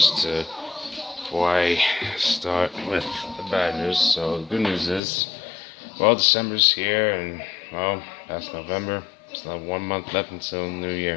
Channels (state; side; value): drops out; right; at 5.0 s